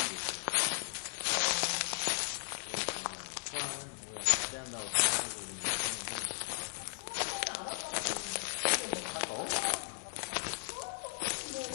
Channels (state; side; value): silent; right; digital silence